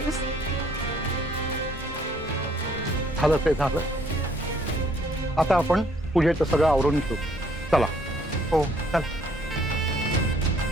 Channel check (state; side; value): normal; both; correlation 0.64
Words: झालं ते झालं. आता आपण पूजेचं सगळं आवरून घेऊ. चला. हो, चल.